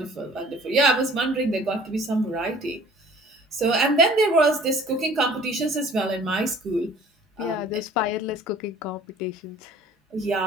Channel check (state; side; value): normal; both; correlation 0.51